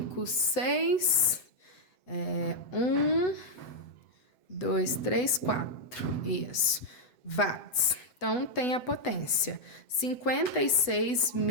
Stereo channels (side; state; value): right; late; 7.6 ms